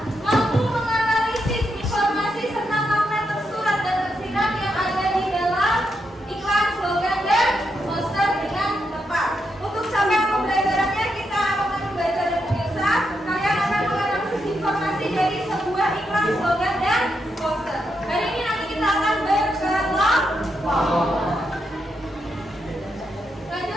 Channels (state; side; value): normal; both; correlation 0.82